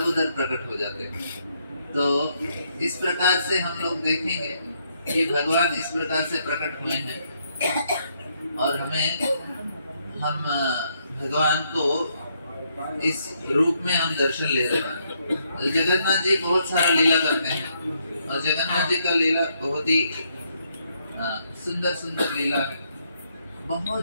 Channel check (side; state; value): both; inverted; correlation -0.74